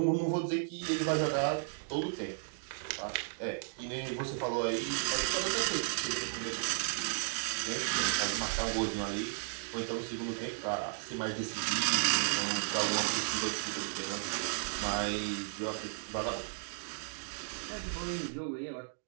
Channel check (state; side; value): silent; left; digital silence